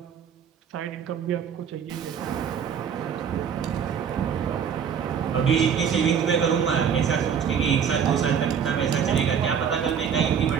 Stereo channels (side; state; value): left; quieter; 7.5 dB